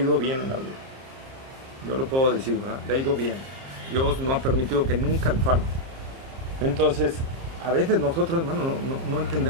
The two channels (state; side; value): late; left; 31 ms